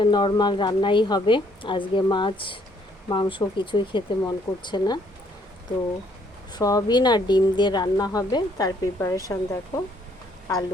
নর্মাল রান্নাই হবে। আজকে মাছ মাংস কিছুই খেতে মন করছে না, তো সয়াবিন আর ডিম দিয়ে রান্না হবে। তার প্রিপারেশান দেখো,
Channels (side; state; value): both; normal; correlation 0.66